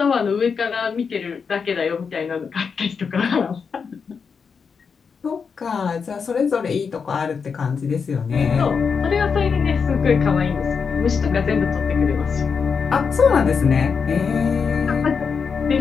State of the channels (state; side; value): quieter; right; 5.8 dB